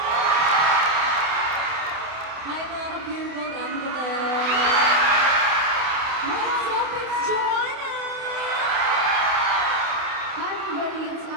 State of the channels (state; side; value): late; left; 28 ms